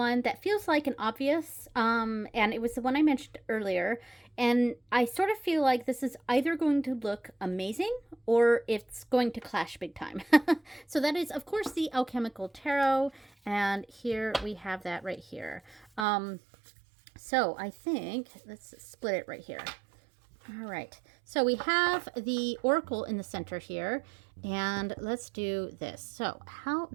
that feels like an obvious, and it was the one I mentioned earlier, and I sort of feel like this is either going to look amazing or it's going to clash big time. So that is, of course, the Alchemical Tarot, and here we have that right here. So I think, let's split it right here. All right, so we have the Oracle in the center here, and let's do this. So how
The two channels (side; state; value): left; drops out; at 16.1 s